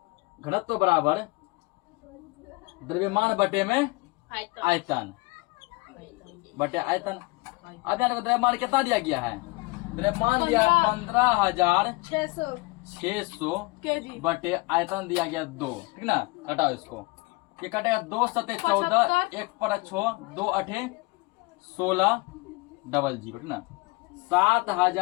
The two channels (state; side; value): quieter; right; 24.7 dB